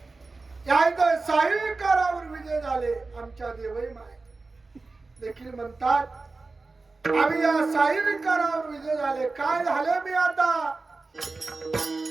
या साईकारावर विजय झाले. आमच्या देवई माय देखील म्हणतात आम्ही या साईकारावर विजय झाले. काय झाले मी आता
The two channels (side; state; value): left; quieter; 3.7 dB